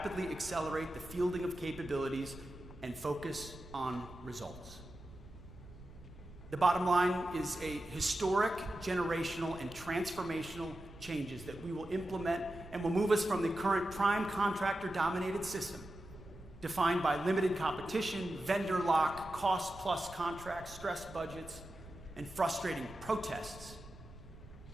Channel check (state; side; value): noise; right; rumble, 17 dB below the sound